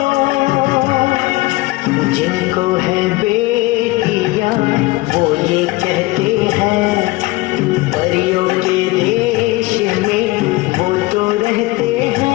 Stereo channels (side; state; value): right; quieter; 20.9 dB